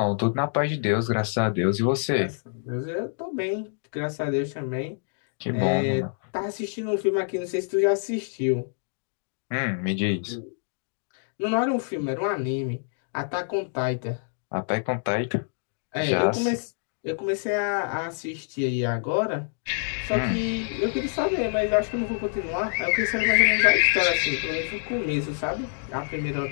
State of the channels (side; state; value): right; silent; digital silence